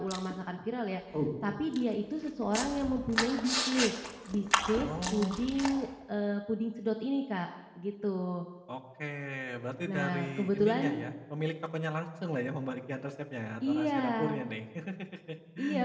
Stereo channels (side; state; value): both; identical; correlation 1.00